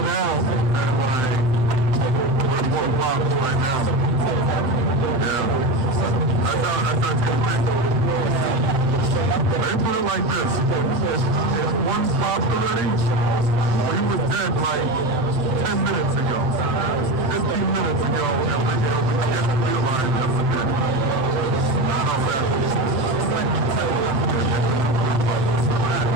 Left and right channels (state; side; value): late; left; 7.8 ms